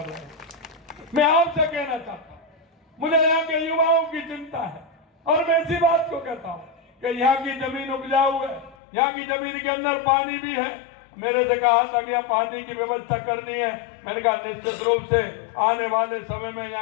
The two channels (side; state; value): right; drops out; at 8.8 s